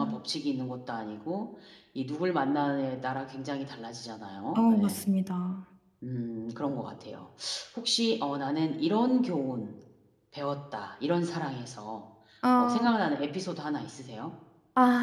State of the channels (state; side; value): identical; both; correlation 1.00